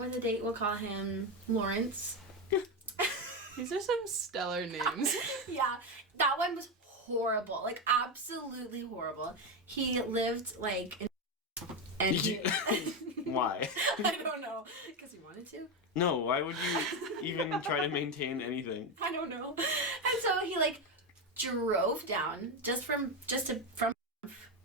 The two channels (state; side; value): normal; both; correlation 0.11